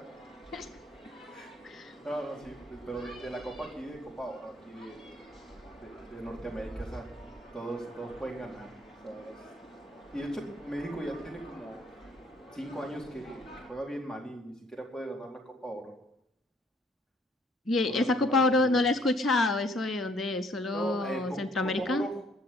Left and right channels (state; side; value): normal; both; correlation 0.63